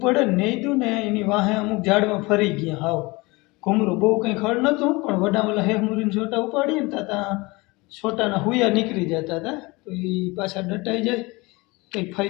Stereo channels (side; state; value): right; quieter; 24.1 dB